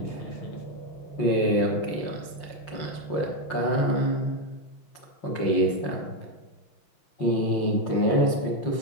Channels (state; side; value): late; right; 5.7 ms